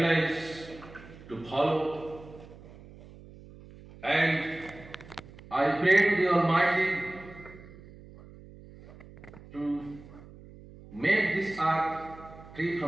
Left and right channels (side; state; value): right; noise; hum, 19 dB below the sound